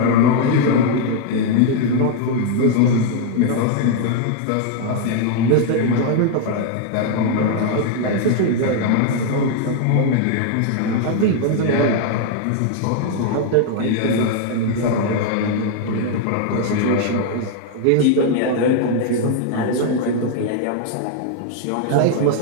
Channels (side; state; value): both; different; correlation 0.00